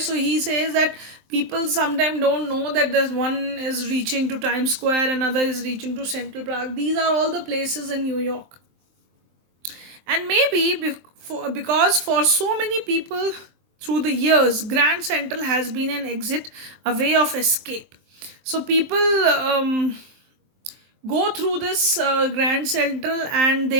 he says that people sometimes don't know that there's one is reaching to Times Square, another is reaching to Central Park. These are all the places in New York. And maybe because for so many people through the years, Grand Central has been an exit, a way of escape. So people go through this Grand Central, and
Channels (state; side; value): late; left; 23 ms